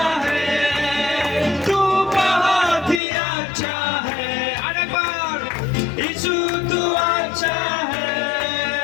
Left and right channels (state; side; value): drops out; right; at 3.0 s